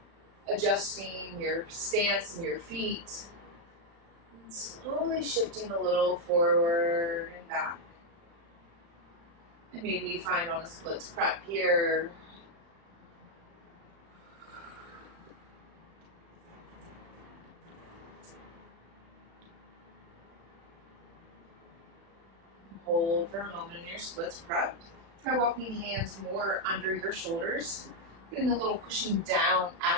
Adjusting your stance and your feet. And slowly shifting a little forward and back. And maybe you find on a splits prep here. Hold for a moment in your splits prep. Try walking hands more under your shoulders. Getting a little pushing down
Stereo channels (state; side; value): late; left; 35 ms